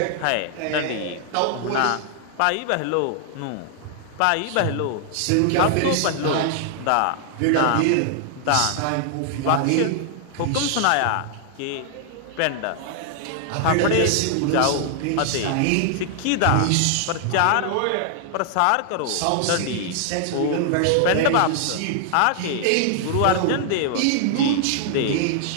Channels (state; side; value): different; both; correlation 0.00